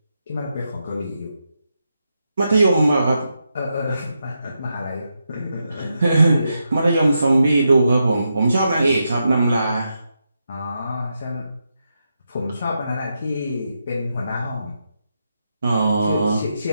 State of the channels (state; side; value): inverted; both; correlation -0.85